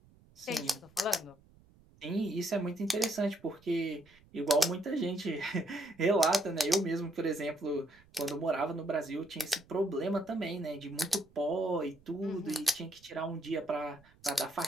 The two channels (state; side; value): noise; right; rumble, 28 dB below the sound